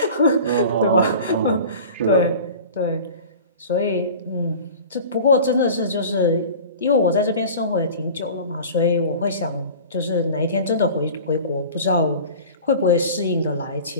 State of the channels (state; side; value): inverted; both; correlation -0.39